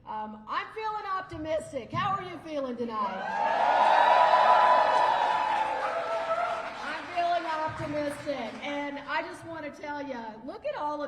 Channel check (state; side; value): identical; both; correlation 1.00